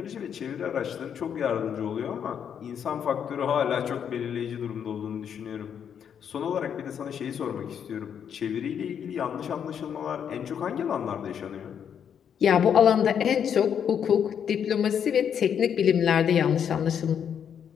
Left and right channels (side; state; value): right; quieter; 8.2 dB